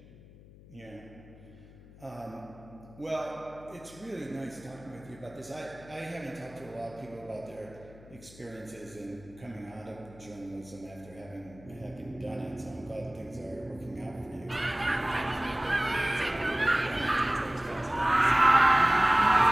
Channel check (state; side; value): noise; left; hum, 21 dB below the sound